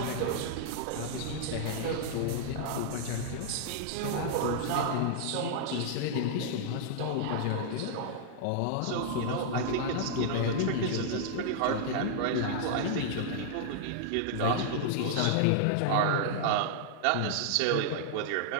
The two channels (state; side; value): different; both; correlation -0.01